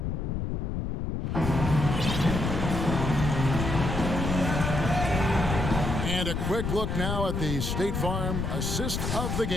And a quick look now at the State Farm assist of the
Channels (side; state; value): left; noise; rumble, 2 dB below the sound